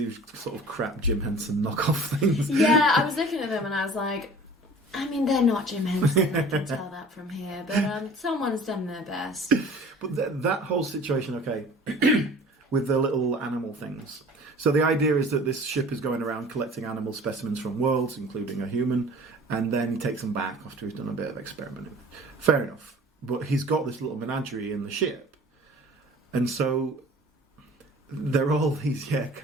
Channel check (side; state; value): both; normal; correlation 0.45